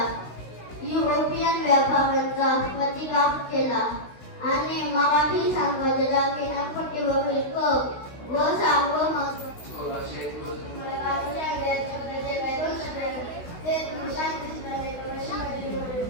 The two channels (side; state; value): right; late; 16 ms